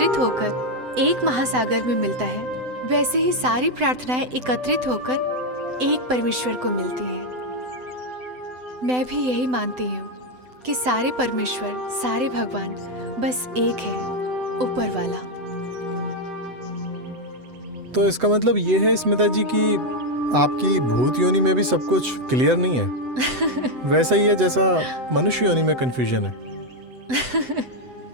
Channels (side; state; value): left; late; 7.9 ms